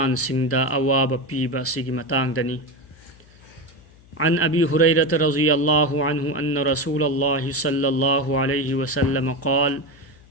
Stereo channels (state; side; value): noise; left; hum, 26 dB below the sound